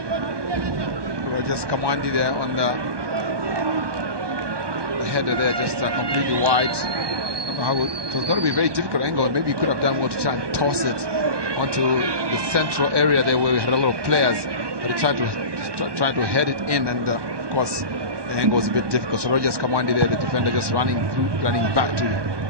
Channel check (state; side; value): late; left; 1.2 ms